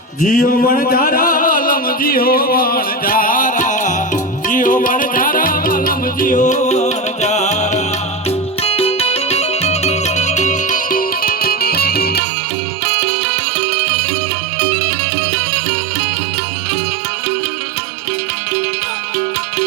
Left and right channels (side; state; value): left; drops out; at 12.2 s